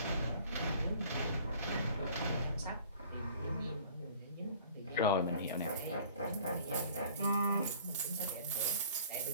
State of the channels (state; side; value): inverted; both; correlation -0.51